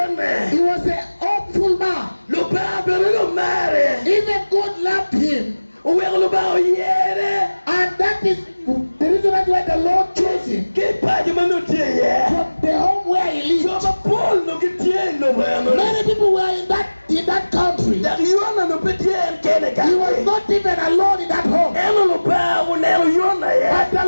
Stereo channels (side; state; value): both; inverted; correlation -1.00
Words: He was an hopeful man. Even God loved him. And that is the reason why the Lord chose him. From the home where he lived. Many people were in that country. He was not even alone in that home. But the